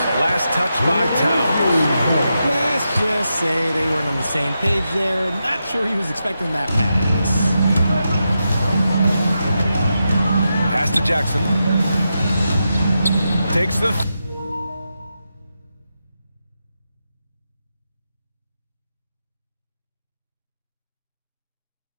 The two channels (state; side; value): inverted; both; correlation -0.87